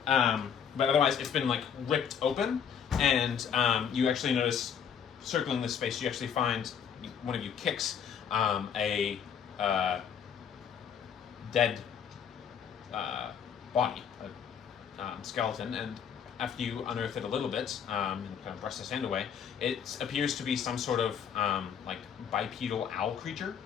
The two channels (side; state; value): right; quieter; 7.8 dB